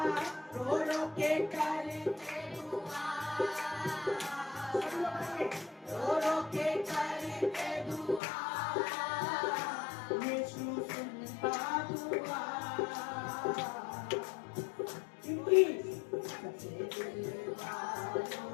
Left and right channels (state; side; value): drops out; right; at 8.2 s